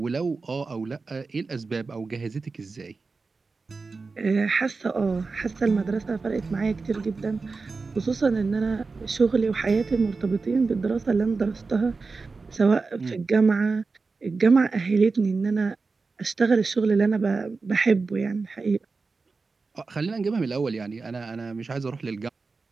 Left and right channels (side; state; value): left; quieter; 4.2 dB